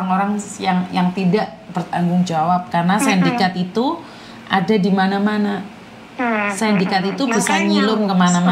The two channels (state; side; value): identical; both; correlation 1.00